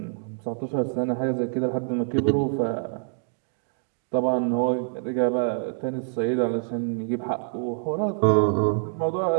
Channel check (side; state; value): left; silent; 61 dB below the other